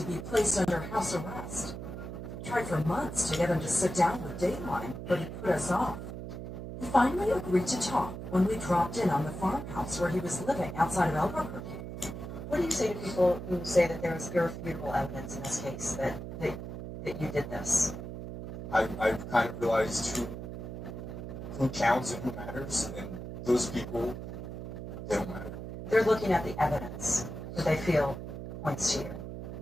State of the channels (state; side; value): noise; right; hum, 8 dB below the sound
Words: be placed under house arrest. We tried for months to get him to sit down with Dateline, but he put us off. He finally agreed to talk when we dropped in on the farmhouse where he was living outside of Albuquerque. What do you say to people who say that there was irrefutable evidence in this case that you did this? I've kind of realized who counts and who matters, and those people, they don't matter. They're looking at the evidence that they feel points to